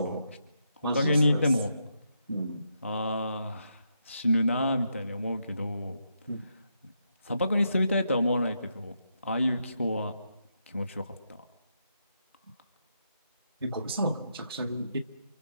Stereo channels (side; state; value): both; inverted; correlation -0.81